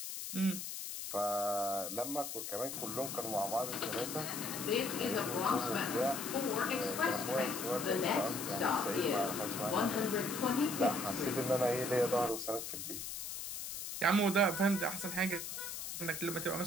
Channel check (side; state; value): left; noise; hiss, 6 dB below the sound